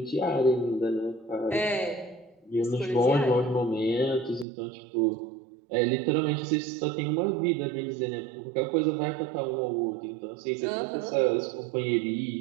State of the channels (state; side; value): drops out; left; at 4.5 s